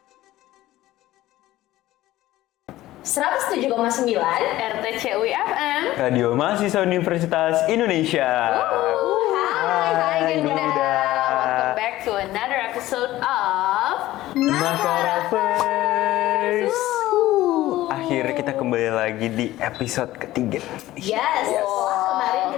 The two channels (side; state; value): right; quieter; 15.8 dB